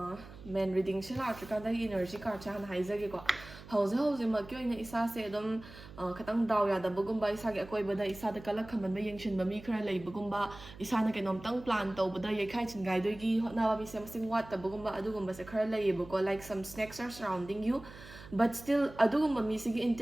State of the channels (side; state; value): right; noise; hum, 17 dB below the sound